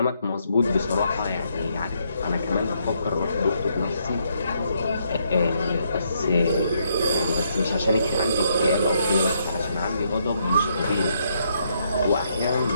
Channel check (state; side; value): inverted; both; correlation -0.74